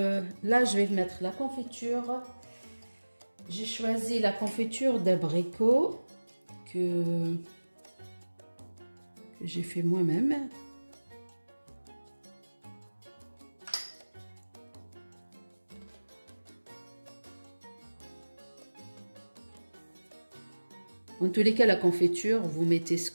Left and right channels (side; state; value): both; inverted; correlation -1.00